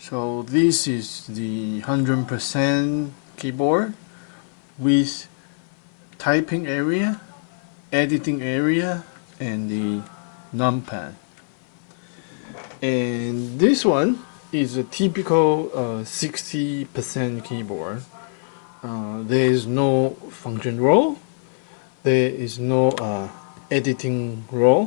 this is the 100% keyboard with typing area, editing area, and the numpad. And this one is a typical 60% keyboard. There is no function role, there is no editing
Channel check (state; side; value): silent; right; 57 dB below the other